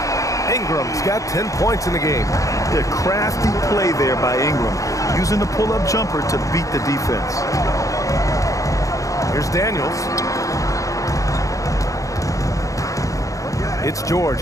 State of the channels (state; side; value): late; right; 0.16 ms